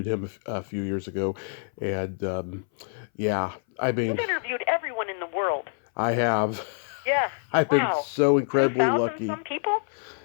him a few years ago, and I mean, you've interviewed everyone in the world. I have. Yeah. I've been so incredibly 2,000 lucky. Some people.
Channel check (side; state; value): right; silent; 61 dB below the other